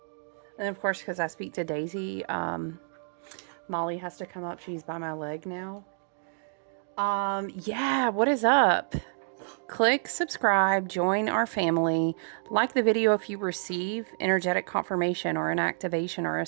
And of course, because I speak to Daisy, Molly has to come up. She's by my leg now. Yeah, what is up? Click subscribe, join our family, like the video if you receive energetic confirmation or an activation or a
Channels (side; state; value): left; silent; digital silence